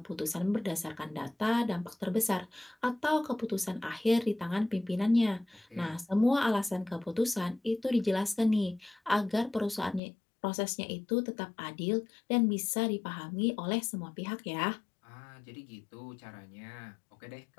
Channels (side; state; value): right; drops out; at 10.0 s